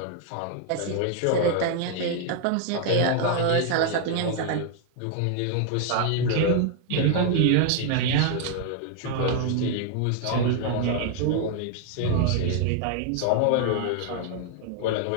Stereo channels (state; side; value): different; both; correlation 0.00